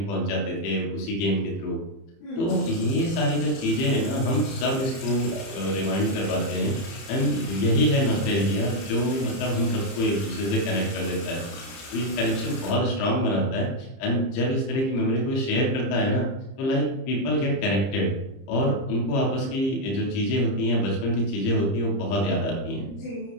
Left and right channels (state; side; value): late; right; 30 ms